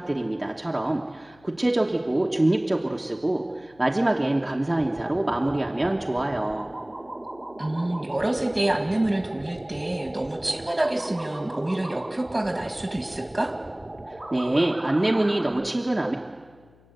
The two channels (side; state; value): left; noise; hum, 29 dB below the sound